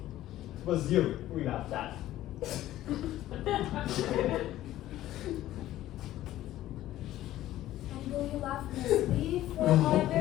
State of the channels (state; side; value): quieter; right; 14.2 dB